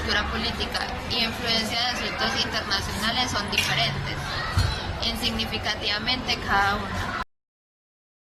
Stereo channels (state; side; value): identical; both; correlation 1.00